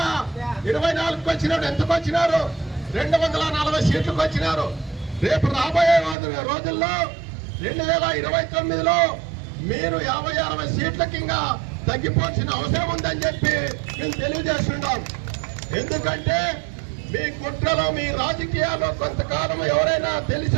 వచ్చినాడు. ఎంతకు వచ్చినారు? 240 సీట్లకు వచ్చినారు. రేపు రాబోయే రోజుల్లో 2029లో మీరు 50-60 సీట్లకి ఇంకా తగ్గిపోవాల్సిన అవసరం ఉందని చెప్పి మేము తెలియజేస్తున్నాం. ఎందుకంటే మీ కుట్రలో, మీ రాజకీయాల్లో కొంతకాలం ఎవరైనా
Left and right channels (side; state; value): left; drops out; at 6.2 s